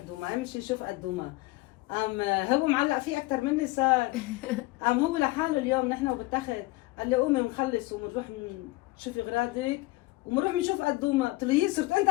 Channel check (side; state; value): right; quieter; 20.9 dB